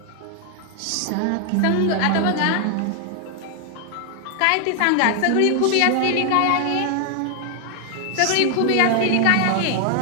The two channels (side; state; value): both; different; correlation 0.00